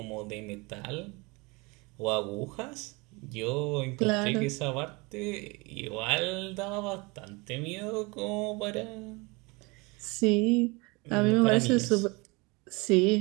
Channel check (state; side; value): quieter; left; 26.7 dB